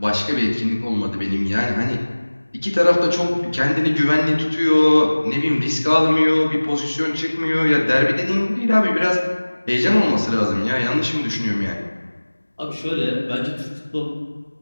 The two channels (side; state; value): both; inverted; correlation -1.00